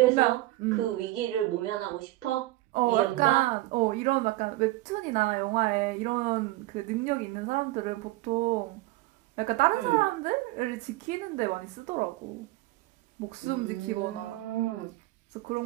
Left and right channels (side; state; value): left; quieter; 18.1 dB